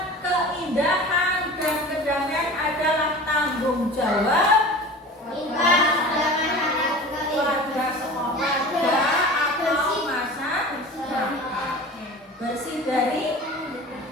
keindahan, dan kedamaian adalah tanggung jawab keluarga sekolah atau masyarakat. Bersih dari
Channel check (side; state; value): both; normal; correlation 0.37